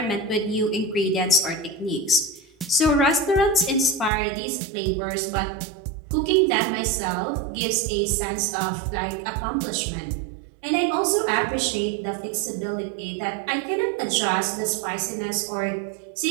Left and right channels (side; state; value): left; drops out; at 4.1 s